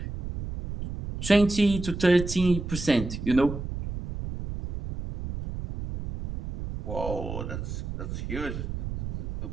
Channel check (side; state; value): right; noise; rumble, 6 dB below the sound